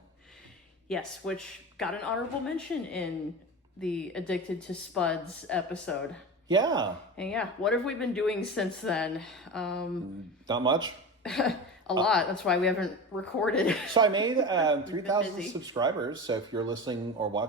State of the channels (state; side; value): normal; both; correlation 0.28